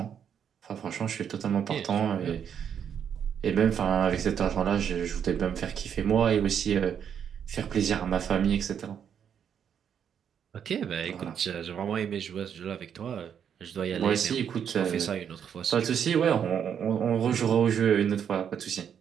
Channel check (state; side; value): quieter; left; 8.2 dB